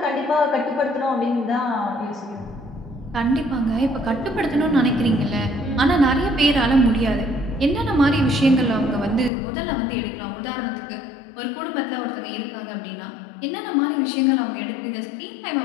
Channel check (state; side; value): drops out; right; at 9.3 s